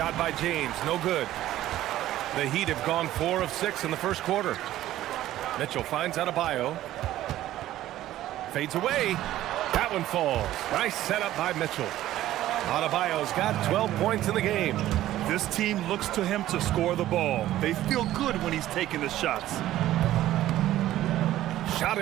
by James, no good. The Heat have gone 4 of 6 in the first quarter. Mitchell finds Adebayo. Fades away. That one falls. Nice setup by Mitchell. Adebayo's got 12 points in the game. This team looks to him to score the ball. They feel good when he's taking the shots. Shot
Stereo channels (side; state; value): left; quieter; 14.0 dB